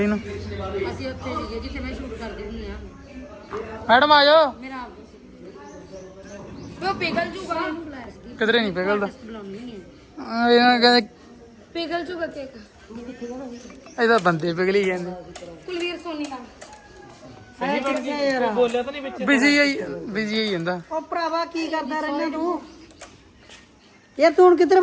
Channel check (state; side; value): identical; both; correlation 1.00